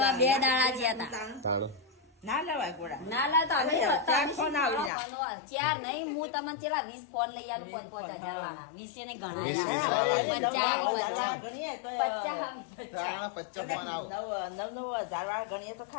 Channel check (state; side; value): drops out; right; at 4.9 s